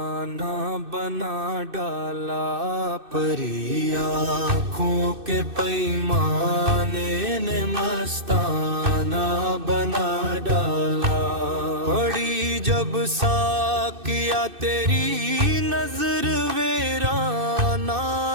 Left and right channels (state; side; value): late; left; 2.6 ms